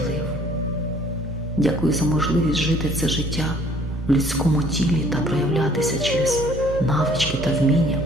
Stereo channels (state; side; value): normal; both; correlation 0.57